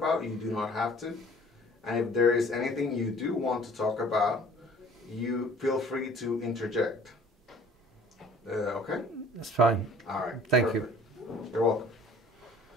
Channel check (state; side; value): normal; both; correlation 0.51